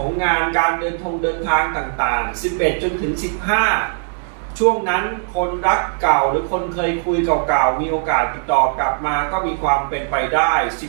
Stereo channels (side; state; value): left; silent; 66 dB below the other